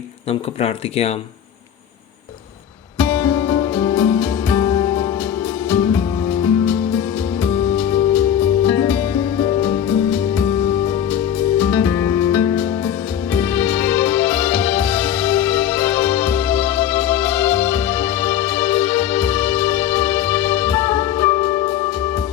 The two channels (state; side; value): quieter; right; 9.9 dB